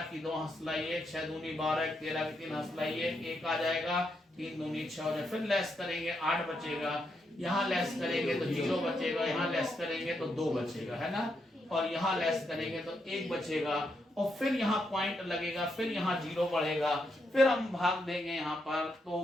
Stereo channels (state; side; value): normal; both; correlation 0.81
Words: की 2 हंसला 1, 6 दूनी 12 13 की 3 हंसला 1 आ जाएगा, 3 दूनी 6 हो जाएगा। फिर लेस करेंगे 8 बचेगा, यहाँ लेस करेंगे तो 0 बचेगा, यहाँ लेस करेंगे तो 2 बचेगा, है ना, और यहाँ लेस करेंगे तो 1 बचेगा, और फिर यहाँ पॉइंट लगेगा, फिर यहाँ 0 बढ़ेगा, फिर हम भाग देंगे यहाँ पर,